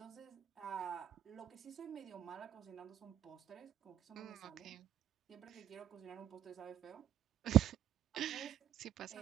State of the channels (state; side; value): quieter; left; 11.0 dB